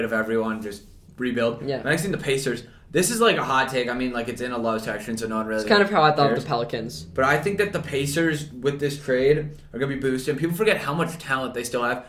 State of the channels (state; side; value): identical; both; correlation 1.00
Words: of everyone. Just rebuild. Yeah. Next team, the Pacers. This is like a hot take. I mean, like it's in a low section, so no one really. It's kind of how I thought of the Pelicans. But I think that the Pacers with this trade are gonna be boosted. People forget how much talent they still have